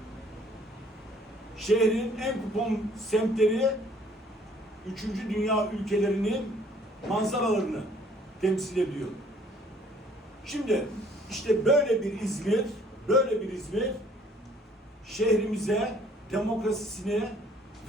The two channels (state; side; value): normal; both; correlation 0.59